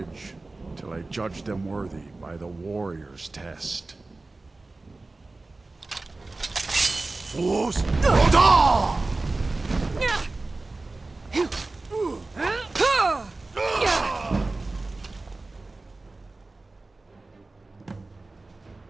till I judge them worthy by the warrior's test. Fools!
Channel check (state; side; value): quieter; left; 3.3 dB